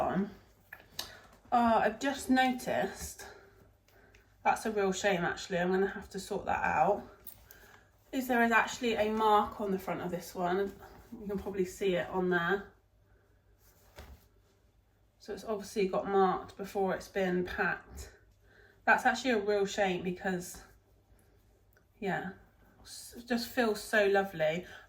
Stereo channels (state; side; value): identical; both; correlation 1.00